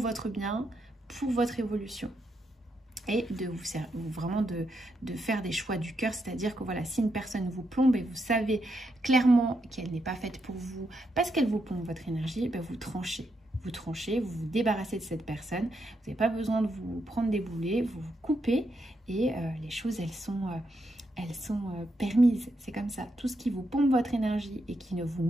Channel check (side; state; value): both; normal; correlation 0.81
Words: bien, pour votre évolution. Et vraiment de faire des choix du cœur, c'est-à-dire que voilà, si une personne vous plombe et vous savez clairement qu'elle n'est pas faite pour vous, parce qu'elle vous plombe votre énergie, ben vous tranchez. Vous vous débarrassez de cette personne, vous n'avez pas besoin de vous prendre des boulets, vous vous coupez et les choses, elles sont permises, c'est comme ça. Tout ce qui vous pompe votre énergie et qui ne vous